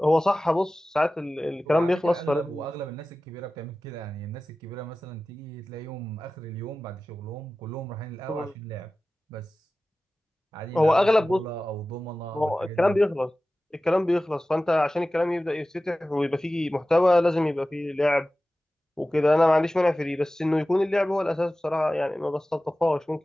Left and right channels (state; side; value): normal; both; correlation 0.96